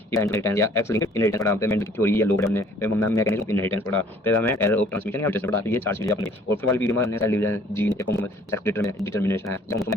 इनहेरिटेंस या एक्स लिंक्ड इनहेरिटेंस पढ़ा, पेमेंट की थ्योरी या लोग हमने, फिर मैकेनिज्म ऑफ इनहेरिटेंस पढ़ा, फिर हमें एरर ऑफ ट्रांसमिशन या म्यूटेशन पढ़ा। तो ये 4 चीजें अपनी। और फिर वाली वीडियो में हमने cell division, gene sex determination है,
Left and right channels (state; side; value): normal; both; correlation 0.56